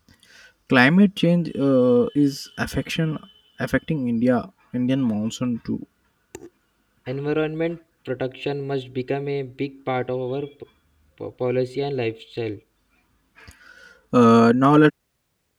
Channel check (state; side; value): identical; both; correlation 1.00